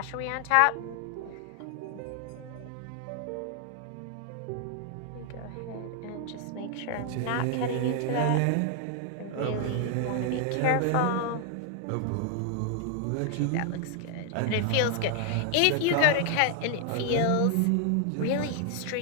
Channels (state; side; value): different; both; correlation 0.00